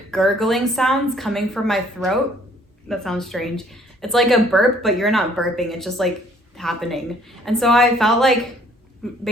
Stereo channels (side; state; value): both; normal; correlation 0.60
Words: gurgling sounds coming from my throat. That sounds strange. It's like a burp, but you're not burping. It's just like happening. And so I felt like,